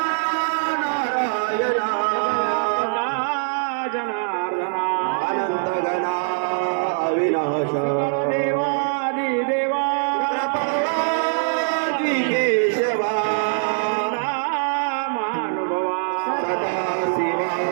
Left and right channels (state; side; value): silent; left; 64 dB below the other